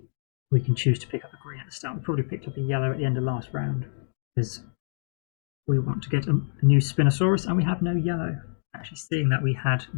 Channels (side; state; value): right; silent; digital silence